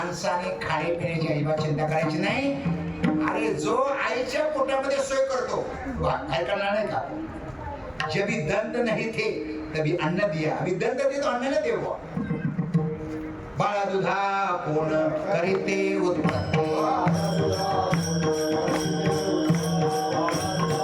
खाण्यापिण्याची अजिबात चिंता करायची नाही. अरे जो आईच्या पोटामध्ये सोय करतो काय करणार नाही का? जबी दंत नाही थे तभी अन्न दिया. अभी दंत दे तो अन्न न देव. बाळा दुधा कोण करीते उत्पत्ती.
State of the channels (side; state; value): both; identical; correlation 1.00